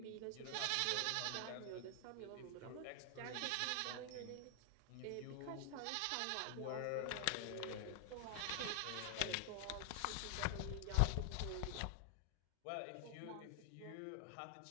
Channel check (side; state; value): both; different; correlation 0.00